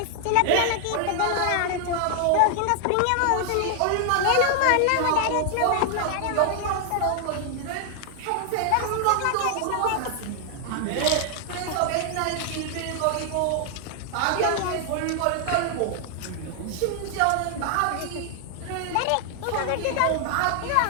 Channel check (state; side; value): different; both; correlation 0.00